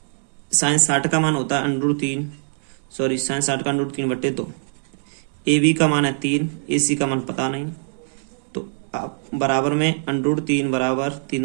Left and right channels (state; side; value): silent; left; 64 dB below the other